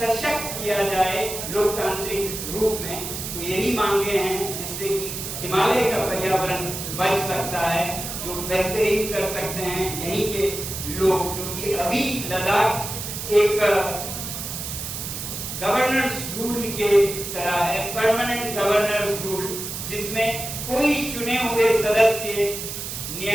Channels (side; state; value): right; noise; hiss, 6 dB below the sound